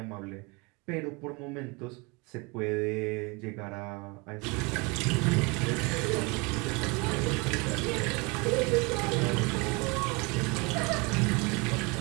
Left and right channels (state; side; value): quieter; left; 28.1 dB